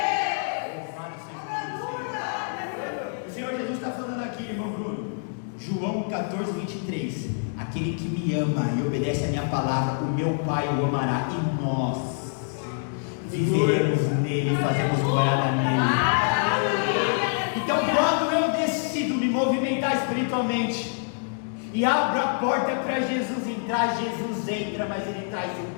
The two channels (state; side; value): silent; right; digital silence